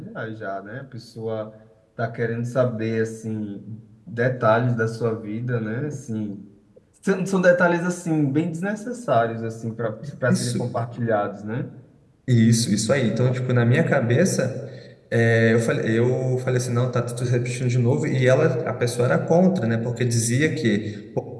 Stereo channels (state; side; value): identical; both; correlation 1.00